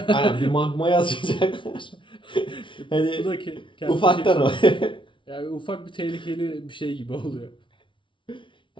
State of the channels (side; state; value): right; late; 0.24 ms